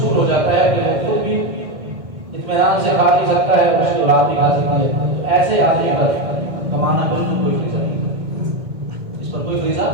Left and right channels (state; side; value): late; left; 1.6 ms